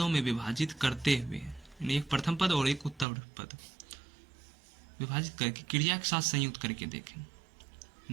में विभाजित करते हुए, एक प्रथम पद और एक उत्तर पद विभाजित करके क्रिया के साथ संयुक्त करके देखें।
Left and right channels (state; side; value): drops out; left; at 3.1 s